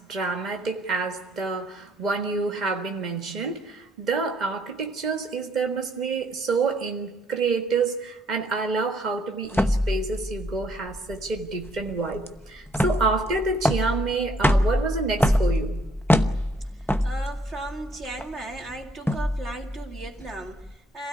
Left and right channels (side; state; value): both; normal; correlation 0.67